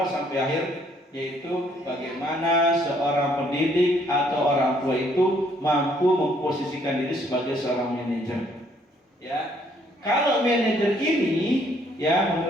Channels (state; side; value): normal; both; correlation 0.66